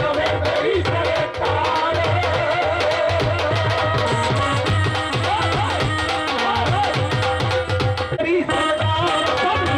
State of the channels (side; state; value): both; identical; correlation 1.00